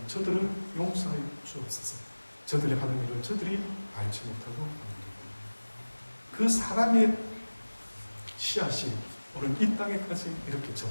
저들을 용서하여 주옵소서. 저들이 하는 일을 저들이 알지 못하고 합니다. 그 사랑의 씨앗이 오늘 이 땅에까지 이렇게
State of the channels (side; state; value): both; inverted; correlation -1.00